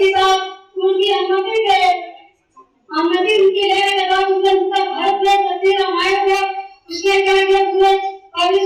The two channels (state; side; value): identical; both; correlation 1.00